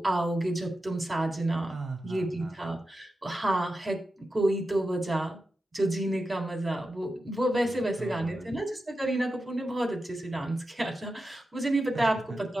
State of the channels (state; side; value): normal; both; correlation 0.90